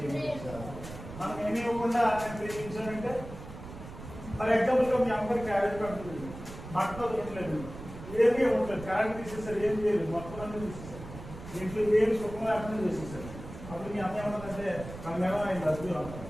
మనం ఏమి ఇవ్వకుండా నేను ప్రేమించానంటే ఫర్ ఎగ్జాంపుల్గా మీ అమ్మగారి క్యారేజ్ పడుతుంది, బట్టలు తినలేదు, ఏమీ ఇవ్వట్లేదు, కరెంట్ తీసేసారు, ఏం చేయలేదు, మొత్తం అన్నీ తీసేసారు, ఇంట్లో ఏమి సుఖం లేకుండా చేసేసారు. అప్పుడు మీ అమ్మ ఏమన్నదంటే మనమేమో ఆయన రద్దు అంటాం.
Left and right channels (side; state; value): right; noise; rumble, 13 dB below the sound